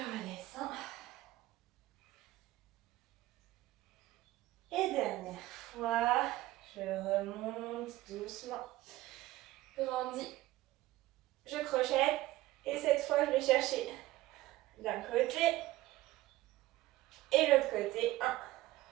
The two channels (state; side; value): quieter; left; 17.0 dB